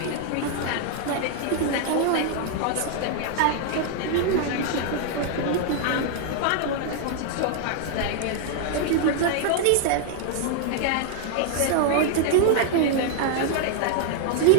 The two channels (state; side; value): different; both; correlation -0.01